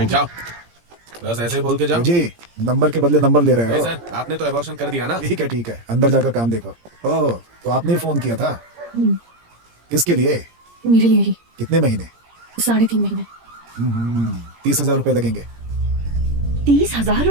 जाओ, बस ऐसे ही बोल के जाओ। जी, नंबर के बदले नंबर ले रहे नहीं हो। सर, आपने तो एबॉर्शन कर दिया ना। ठीक है, अंदर जाकर काम देखो। ओह, तो आपने ही फोन किया था? किसके लिए? मेरे लिए ही। कितने महीने? 3.5 महीने। 30,000 रुपए लगेंगे। 30,000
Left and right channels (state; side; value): late; left; 17 ms